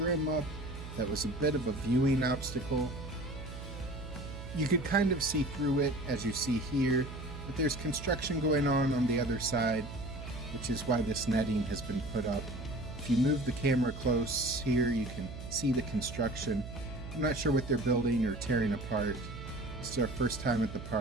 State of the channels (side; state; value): right; noise; hum, 11 dB below the sound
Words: up that was a bit of a viewing obstacle. You could kind of see through it as you see here, but there's construction going on the other side, which is why this netting has been put up. If you move the camera close here, you can see the construction. I'm not sure what they're building or tearing apart. This is our first time at the